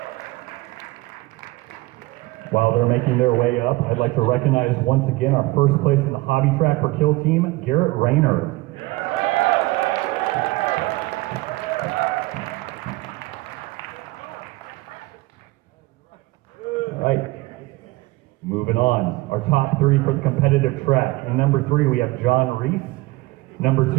While they're making their way up, I'd like to recognize once again our first place in the hobby track for Kill Team, Garrett Rayner. All right, moving on. Our top 3 for the competitive track. In #3, we have John Reese.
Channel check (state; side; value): quieter; left; 20.7 dB